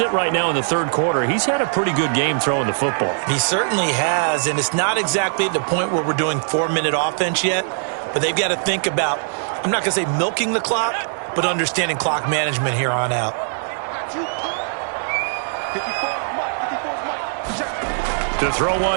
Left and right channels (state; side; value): silent; left; digital silence